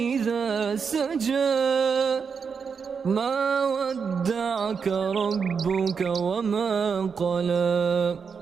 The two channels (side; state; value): left; quieter; 6.0 dB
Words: إذا سجى ما ودعك ربك وما قلى